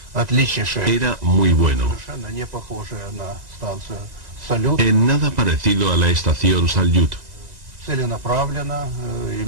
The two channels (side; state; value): left; late; 2.0 ms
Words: era muy bueno. En nada parecido a la estación Salyut.